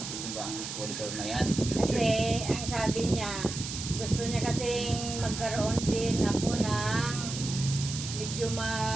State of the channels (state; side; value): noise; right; hiss, 7 dB below the sound